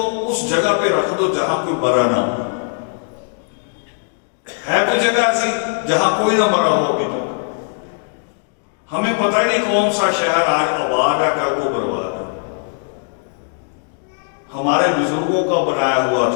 उस जगह पे रख दो जहां कोई मरा ना हो। है कोई जगह ऐसी जहां कोई ना मरा हो अभी तक? हमें पता ही नहीं कौन सा शहर आज आबाद है, कर वो बर्बाद है। हमारे बुजुर्गों का बनाया हुआ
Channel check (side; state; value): right; silent; 67 dB below the other